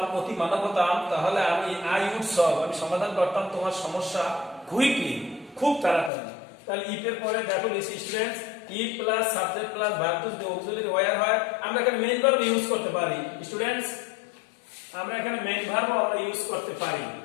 অতি মানব হতাম, তাহলে আমি আই উড সলভ, আমি সমাধান করতাম তোমার সমস্যা কুইকলি, খুব তাড়াতাড়ি। তাহলে ইফ এর পরে দেখো students, if plus subject plus verb two যদি অক্সিলারি ওয়্যার হয়, আমরা এখানে মেইন ভার্ব ইউজ করতে পারি। স্টুডেন্টস, আমরা এখানে মেইন ভার্ব আমরা ইউজ করতে পারি।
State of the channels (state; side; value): drops out; right; at 6.1 s